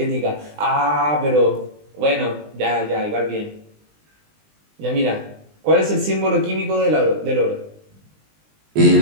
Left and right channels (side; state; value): left; late; 20 ms